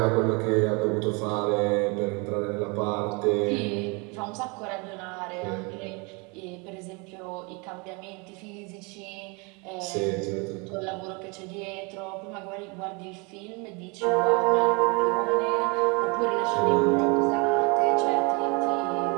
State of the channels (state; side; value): quieter; left; 30.2 dB